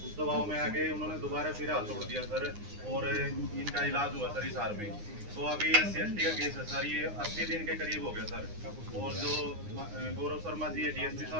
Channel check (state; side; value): late; left; 9.7 ms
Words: उस दबाव में आके उन्होंने दोबारा फिर हाथ तोड़ दिया सर और इनका इलाज हुआ सर हिसार में। तो अभी SC/ST का केस है सर, ये 80 दिन के करीब हो गया सर। और जो गौरव शर्मा जी है DSP